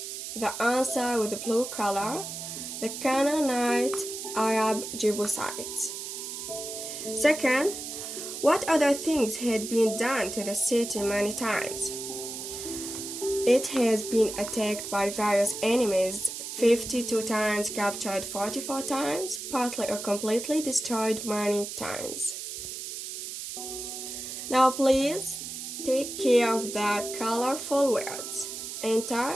The answer with the blue color, the Canaanite Arab Jebusites. Second, what other things had been done to the city many times? It has been attacked by various enemies 52 times, captured 44 times, partly or completely destroyed many times. Now please take care of the colorful words. Enter,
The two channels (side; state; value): right; noise; hiss, 7 dB below the sound